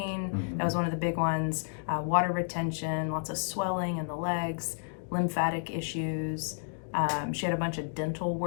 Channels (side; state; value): right; silent; digital silence